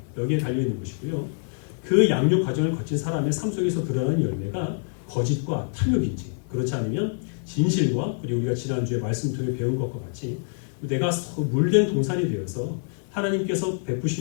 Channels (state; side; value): silent; right; digital silence